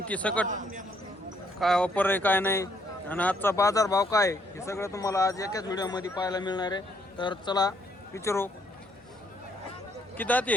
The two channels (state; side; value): normal; both; correlation 0.69